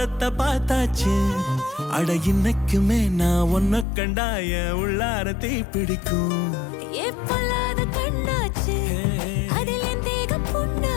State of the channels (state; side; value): drops out; right; at 3.9 s